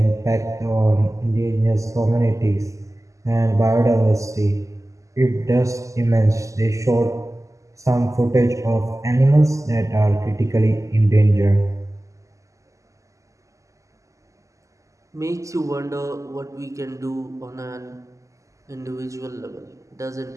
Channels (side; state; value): left; late; 0.16 ms